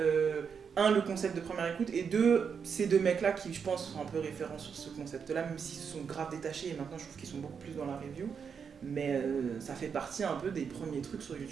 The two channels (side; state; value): left; quieter; 6.5 dB